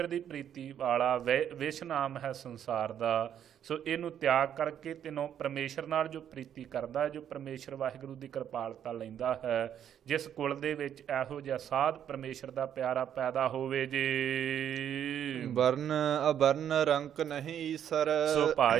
ਦੀ ਪ੍ਰੀਤੀ ਵਾਲਾ ਵਿਸ਼ ਨਾਮ ਹੈ ਸੰਸਾਰ ਦਾ, ਸੋ ਇਹਨੂੰ ਤਿਆਗ ਕਰਕੇ ਤੈਨੂੰ ਪਰਮੇਸ਼ਰ ਨਾਲ ਜੋ ਪ੍ਰੀਤੀ ਕਰਦਾ, ਜੋ ਪਰਮੇਸ਼ਰ ਵਾਹਿਗੁਰੂ ਦੀ ਕਿਰਪਾਲਤਾ ਲੈਂਦਾ ਹੈ, ਜਿਸ ਕੁਲ ਦੇ ਵਿੱਚ ਇਹੋ ਜਿਹਾ ਸਾਧ ਪਰਮੇਸ਼ਰ ਦਾ ਪਿਆਰਾ ਪੈਦਾ ਹੋਵੇ ਜੀ। ਵਰਨ ਅਵਰਨ ਰੰਕ ਨਹੀਂ ਈਸਰ। ਸੋ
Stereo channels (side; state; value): left; quieter; 9.6 dB